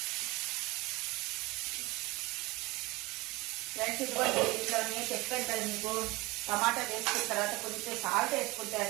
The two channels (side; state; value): left; quieter; 22.4 dB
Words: ఫ్రెండ్స్, ఇదిగోండి ఇంట్లోనే చెప్పాను కదా మీకు, టమాటా వేసుకున్న తర్వాత కొంచెం సాల్ట్